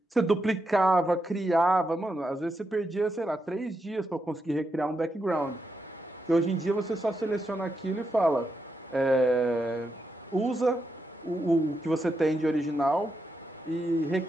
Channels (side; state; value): both; normal; correlation 0.84